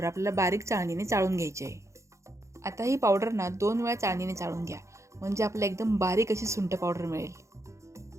आपल्याला बारीक चाळणीने चाळून घ्यायची आहे. आता ही पावडर 2 वेळा चाळणीने चाळून घ्या, म्हणजे आपल्याला एकदम बारीक अशी सुंठ पावडर मिळेल.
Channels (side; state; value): left; late; 0.14 ms